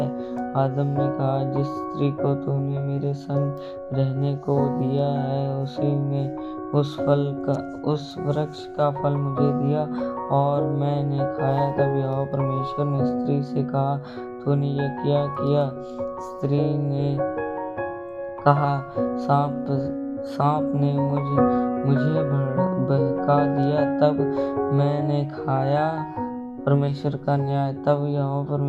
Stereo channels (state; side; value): identical; both; correlation 1.00